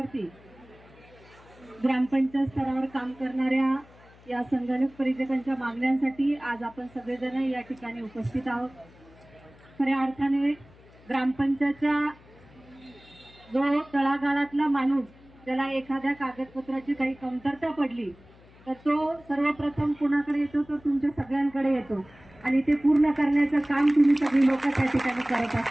ग्रामपंचायत स्तरावर काम करणाऱ्या या संगणक परिचारकांच्या मागण्यांसाठी आज आपण सगळेजण या ठिकाणी उपस्थित आहोत। खऱ्या अर्थाने ग्रामपंचायतच्या जो तळागाळातला माणूस ज्याला एखाद्या कागदपत्राची काही कमतरता पडली तर तो सर्वप्रथम कुणाकडे येतो, तो तुमच्या सगळ्यांकडे येतो आणि ते पूर्ण करण्याचं काम तुम्ही सगळी लोक त्या ठिकाणी करत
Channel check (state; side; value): noise; left; hum, 25 dB below the sound